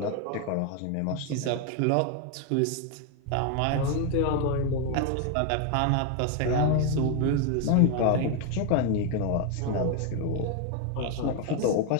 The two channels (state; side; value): different; both; correlation 0.01